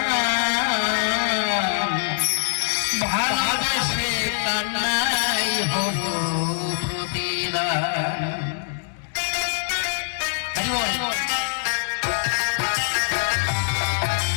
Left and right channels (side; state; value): right; silent; 63 dB below the other